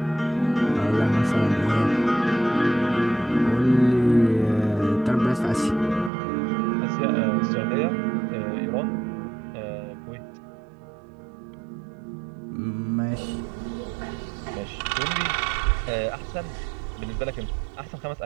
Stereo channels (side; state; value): left; drops out; at 6.1 s